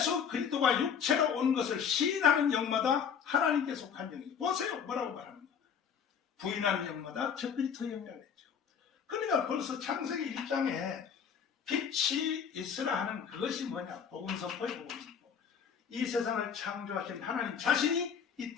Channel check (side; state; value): right; quieter; 7.3 dB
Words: 그리스도가 육체로 온 것을 시인하는 영마다 하나님께 속한 영이. 보세요. 뭐라고 말합니까? 부인하는 영마다 저 그리스도 영이라고 했죠. 그러니까 벌써 창세기 1장에 빛이 있으라 하는 그것이 뭐냐? 복음 선포의 복음 선포. 이 세상을 창조하신 하나님 자신이 이